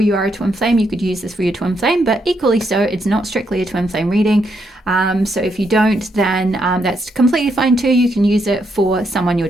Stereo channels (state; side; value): normal; both; correlation 0.78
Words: are a twin flame, you could use this for your twin flame, but equally so, it's not strictly a twin flame reading. So if you don't, then that's completely fine too. You can use it for someone you're